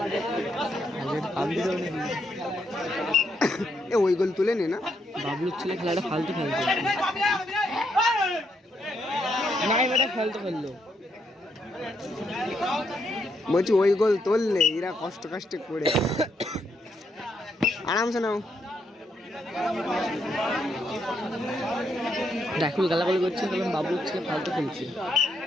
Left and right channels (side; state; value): both; normal; correlation 0.77